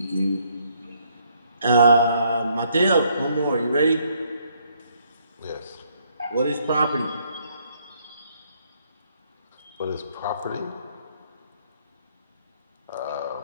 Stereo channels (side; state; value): both; inverted; correlation -0.69